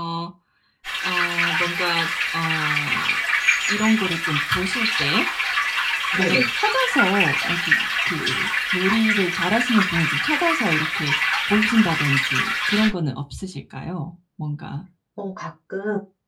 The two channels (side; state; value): both; identical; correlation 1.00